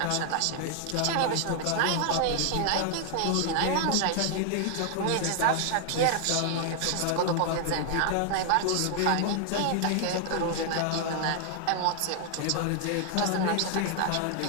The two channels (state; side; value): different; both; correlation 0.00